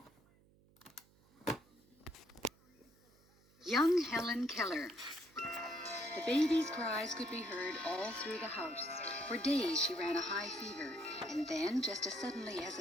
Young Helen Keller. The baby's cries could be heard all through the house. For days she ran a high fever, and then, just as suddenly as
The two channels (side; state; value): right; noise; hum, 29 dB below the sound